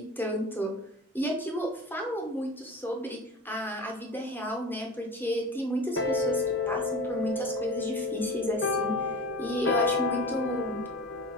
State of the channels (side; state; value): both; normal; correlation 0.34